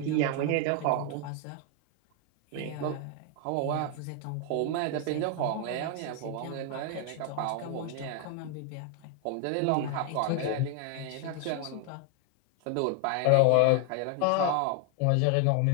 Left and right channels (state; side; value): different; both; correlation 0.00